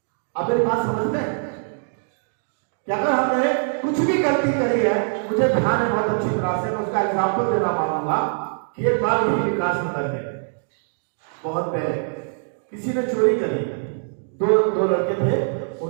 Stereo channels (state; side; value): silent; left; 61 dB below the other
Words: आप मेरी बात समझते हैं कि अगर हमने कुछ भी गलती करी है, मुझे ध्यान है बहुत अच्छी तरह से, मैं उसका एग्जाम्पल देना पाऊंगा कि एक बार भी विकास नगर में बहुत पहले किसी ने चोरी करी, दो लड़के थे,